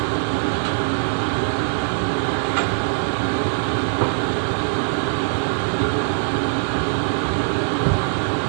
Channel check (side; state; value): left; silent; digital silence